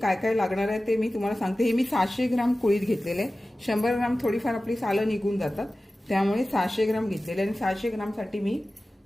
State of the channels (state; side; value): normal; both; correlation 0.96